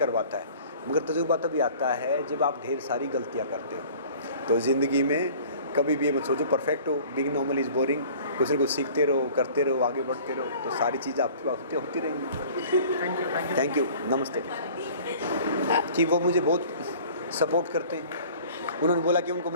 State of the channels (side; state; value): both; inverted; correlation -0.47